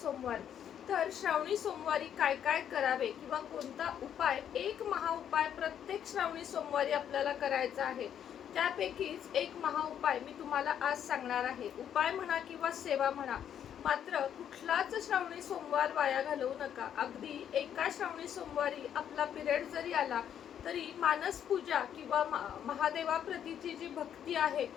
तर श्रावणी सोमवारी काय काय करावे किंवा कोणता उपाय, एक महाउपाय प्रत्येक श्रावणी सोमवारी आपल्याला करायचा आहे. त्यापैकीच एक महाउपाय मी तुम्हाला आज सांगणार आहे. उपाय म्हणा किंवा सेवा म्हणा, मात्र कुठलाच श्रावणी सोमवार वाया घालवू नका. अगदी एका श्रावणी सोमवारी आपला पिरियड जरी आला तरी मानस पूजा किंवा महादेवाप्रतीची जी भक्ती आहे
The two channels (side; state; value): right; quieter; 9.4 dB